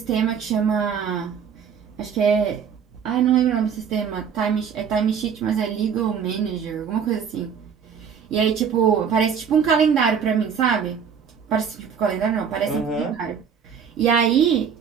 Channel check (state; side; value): quieter; left; 7.2 dB